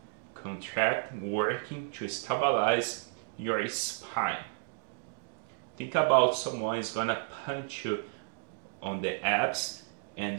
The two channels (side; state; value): left; silent; digital silence